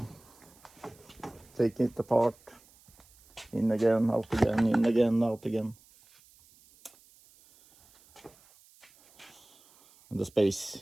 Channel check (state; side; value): noise; right; hiss, 28 dB below the sound